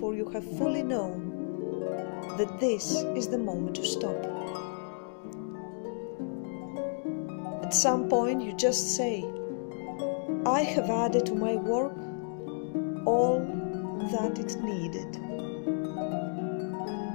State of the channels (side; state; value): right; silent; digital silence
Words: you have fully known that this is the moment to stop. At some point you just say, I have added to my work all that it needed.